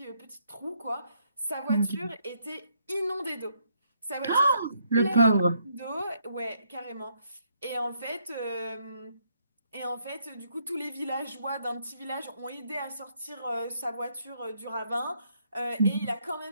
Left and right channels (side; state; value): both; inverted; correlation -0.73